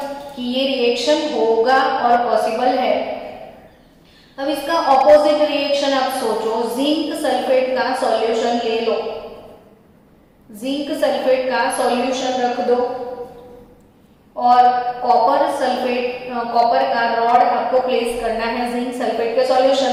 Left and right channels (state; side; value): identical; both; correlation 1.00